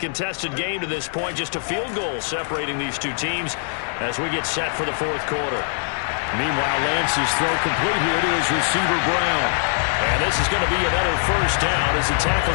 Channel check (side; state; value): right; silent; 60 dB below the other